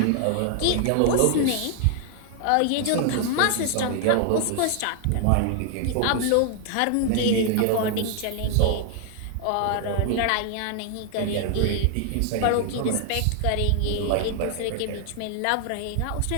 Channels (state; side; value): different; both; correlation 0.00